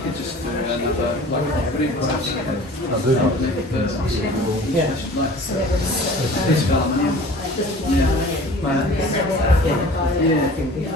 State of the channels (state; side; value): normal; both; correlation 0.44